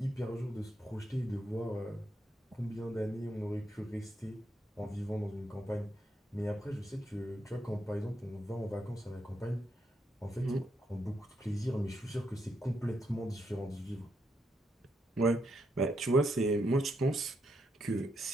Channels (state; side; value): normal; both; correlation 0.79